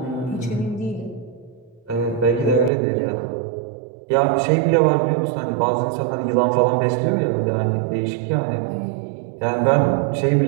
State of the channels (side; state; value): left; drops out; at 2.7 s